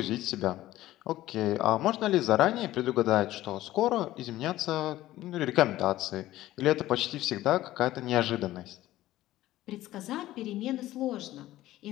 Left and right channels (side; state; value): right; quieter; 15.3 dB